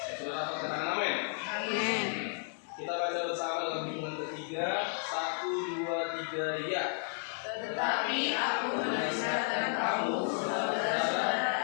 Sudah dapat katakan amin. Amin. Kita baca bersama dalam hitungan ketiga. 1, 2, 3, ya. Tetapi aku menasihatkan kamu,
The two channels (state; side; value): silent; right; 56 dB below the other